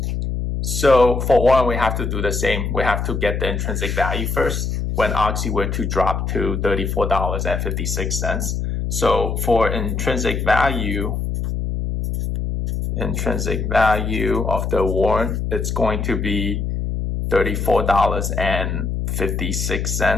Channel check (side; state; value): left; noise; hum, 2 dB below the sound